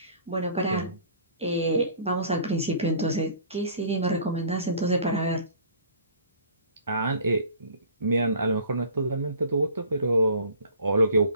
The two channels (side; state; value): both; inverted; correlation -0.49